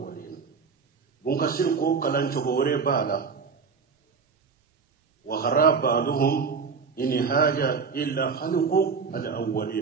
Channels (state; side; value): quieter; left; 5.4 dB